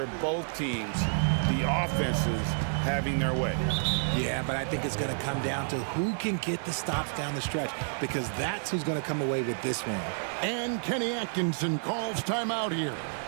both teams. The offenses having their way. Yeah, but I think it's going to come down to who can get the stops down the stretch, because that's who's going to come away with this one. And Kenny Atkinson calls timeout here.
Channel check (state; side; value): silent; left; digital silence